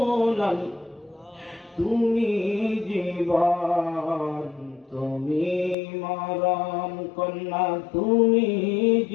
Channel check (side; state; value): right; drops out; at 5.8 s